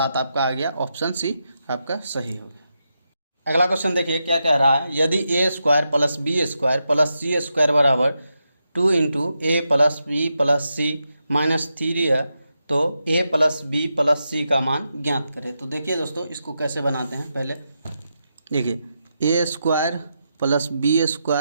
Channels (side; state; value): both; inverted; correlation -0.86